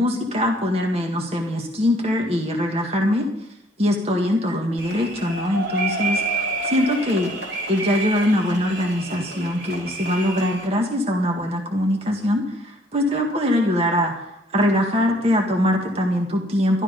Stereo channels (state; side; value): normal; both; correlation 0.61